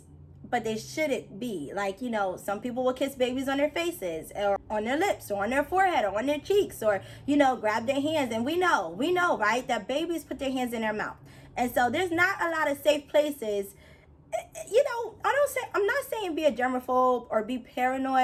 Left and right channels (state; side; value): identical; both; correlation 1.00